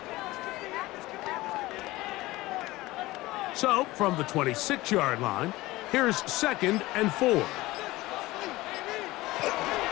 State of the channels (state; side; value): quieter; right; 19.1 dB